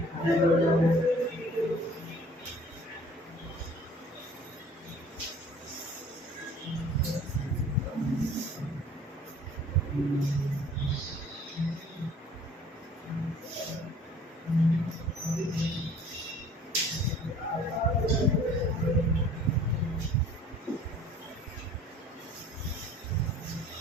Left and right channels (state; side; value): normal; both; correlation 0.51